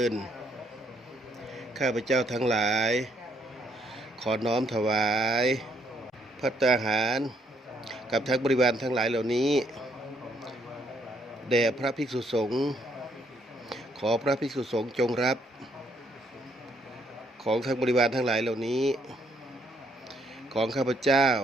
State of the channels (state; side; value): normal; both; correlation 0.70